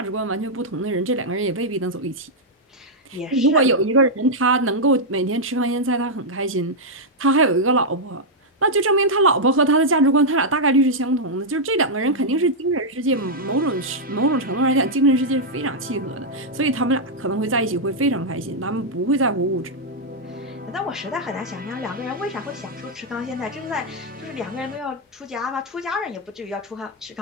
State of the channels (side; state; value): both; normal; correlation -0.04